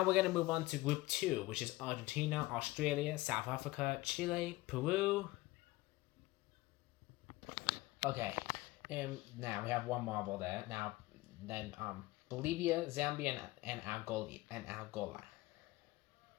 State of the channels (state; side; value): quieter; right; 19.7 dB